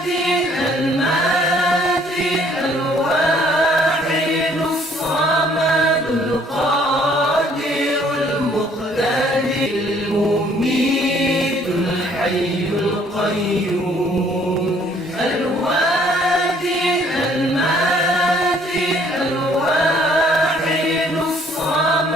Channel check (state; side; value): normal; both; correlation 0.61